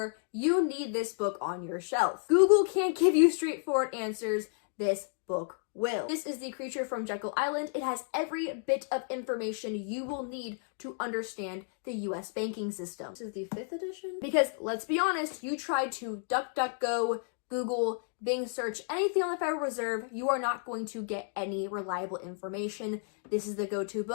you need this book on your shelf. Google can't give you straightforward answers. This book will. This is The Creature from Jekyll Island. It has every bit of information you will need to understand the US banking system. This is the 5th edition? Because let's be honest, you try to DuckDuckGo, Google, Bing search anything on the Federal Reserve, you are not going to get any reliable information. This is the go-to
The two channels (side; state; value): right; silent; 57 dB below the other